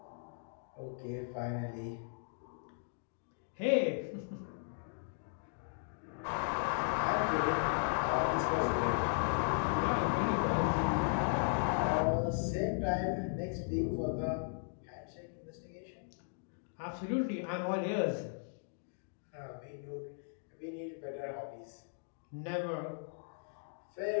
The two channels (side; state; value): right; silent; digital silence